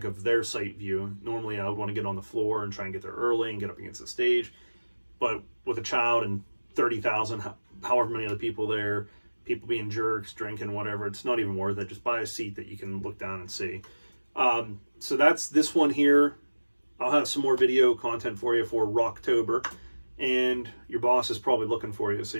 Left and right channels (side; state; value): both; inverted; correlation -1.00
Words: of their sight view. Normally, I would want to get on the floor and try and get there early and get up against the stage. But with a child and 30,000, however many other people there, people being jerks, drinking, whatever, it's not even worth it. Just buy a seat that you can look down and see. So that's this one here. I'll have some more video content for you for Rocktober. And your boss is probably looking for you, so